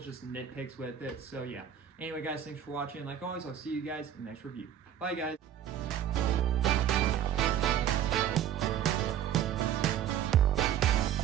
just nitpicks with it. So yeah. Anyway, guys, thanks for watching. Like always, I'll see you guys in the next review. Bye, guys.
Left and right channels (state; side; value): quieter; left; 9.9 dB